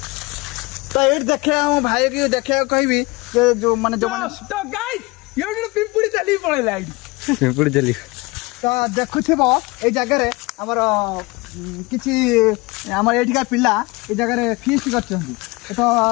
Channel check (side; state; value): right; quieter; 24.2 dB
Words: तो ये देखे भाई की देखे कहबी जो माने जो तो गाइस ये पिंपुड़ी चली पड़ेला पिंपुड़ी चली तो देखुथिबो ए जगह हमर किछि हमर एठिका पिला ए जगह फीस्ट करछन्ती तो